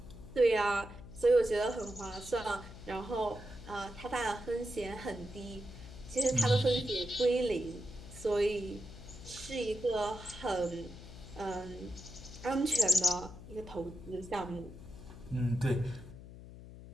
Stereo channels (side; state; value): left; noise; hum, 15 dB below the sound